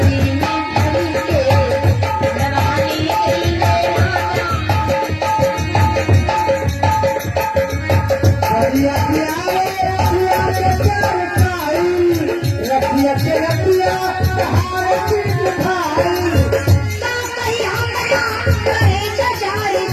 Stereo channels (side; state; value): both; identical; correlation 1.00